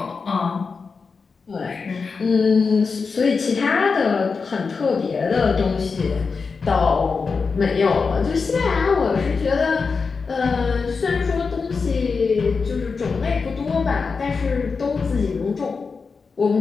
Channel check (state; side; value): quieter; right; 4.9 dB